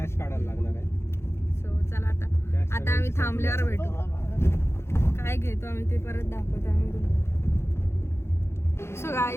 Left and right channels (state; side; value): late; right; 0.12 ms